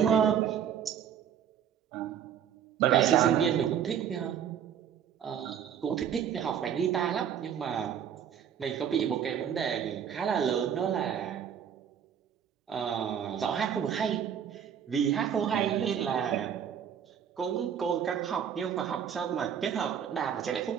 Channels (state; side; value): quieter; left; 8.7 dB